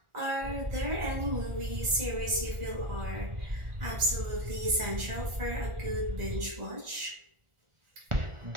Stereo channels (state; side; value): late; left; 1.4 ms